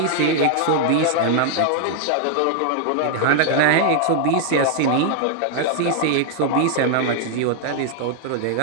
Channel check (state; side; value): different; both; correlation 0.00